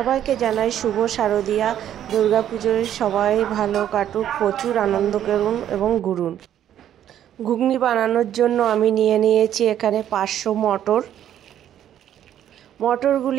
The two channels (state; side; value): quieter; left; 10.8 dB